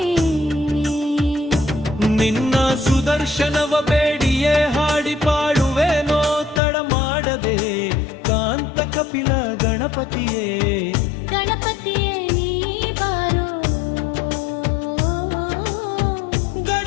ನಿನ್ನ ಸುದರ್ಶನವ ಬೇಡಿಯೇ ಹಾಡಿ ಪಾಡುವೆನೋ ತಡ ಮಾಡದೆ, ಕಾಂತ ಕಪಿಲ ಗಣಪತಿಯೇ, ಗಣಪತಿಯೇ ನೀ ಬಾರೋ,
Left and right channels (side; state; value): right; drops out; at 6.6 s